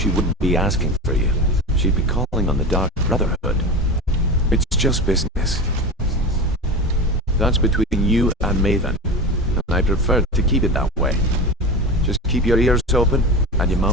wouldn't be asking for you. She'd be calling on the Dark Brotherhood. It's just business. That's between you and Maven, and I prefer to keep it that way. Just keep your ears open and your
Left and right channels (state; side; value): normal; both; correlation 0.26